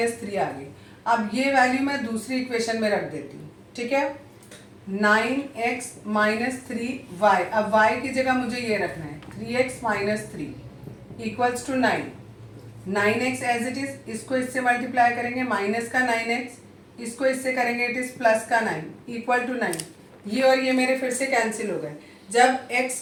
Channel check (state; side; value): identical; both; correlation 1.00